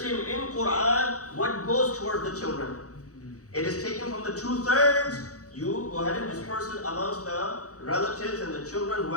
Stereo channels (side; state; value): right; late; 0.66 ms